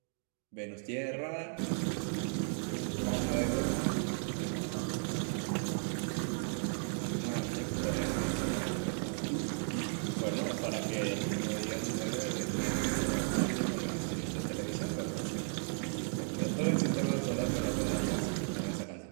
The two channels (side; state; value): left; silent; 55 dB below the other